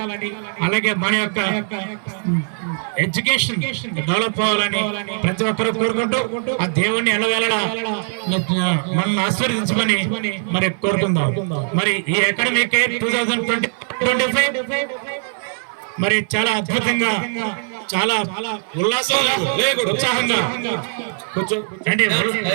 అలాగే మన యొక్క ఎడ్యుకేషన్ డెవలప్ అవ్వాలని ప్రతి ఒక్కరూ కోరుకుంటూ ఆ దేవుణ్ణి ఎలవేళలా మనల్ని ఆశీర్వదించమని మరి కోరుకుందాం. మరి ఈ అకాడమిక్ 2025 మరి చాలా అద్భుతంగా, చాలా ఉల్లాసంగా, ఉత్సాహంగా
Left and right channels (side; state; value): left; silent; 58 dB below the other